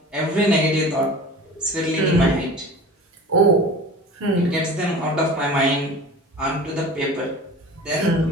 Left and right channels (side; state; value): both; normal; correlation 0.38